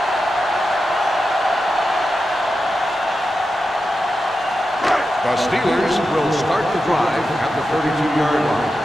The Steelers will start the drive at the 32-yard line.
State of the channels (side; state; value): both; normal; correlation 0.90